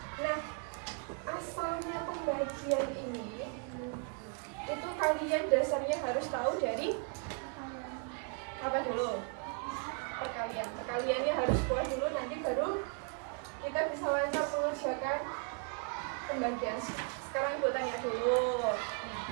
Nah, asalnya pembagian ini itu kalian dasarnya harus tahu dari apa dulu? Perkalian. Perkaliannya harus kuat dulu, nanti baru kita bisa lancar mengerjakan pembagian. Sekarang ibu tanya dulu.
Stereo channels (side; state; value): left; quieter; 39.3 dB